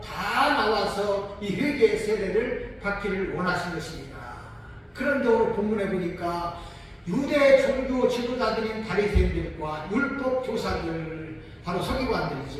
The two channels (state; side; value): identical; both; correlation 1.00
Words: 다 나와서 이 회개의 세례를 받기를 원하신 것입니다. 그런데 오늘 본문에 보니까 유대 종교 지도자들인 바리새인들과 율법 교사들 바로